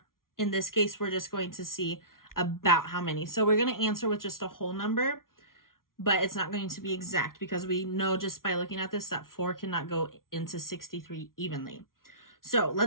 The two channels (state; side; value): late; right; 0.92 ms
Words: in this case, we're just going to see about how many. So we're going to answer with just a whole number, but it's not going to be exact because we know just by looking at this that 4 cannot go into 63 evenly. So